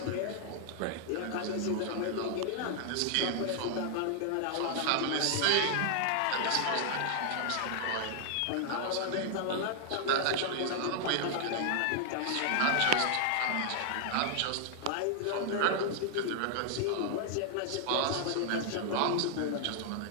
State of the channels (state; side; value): different; both; correlation -0.01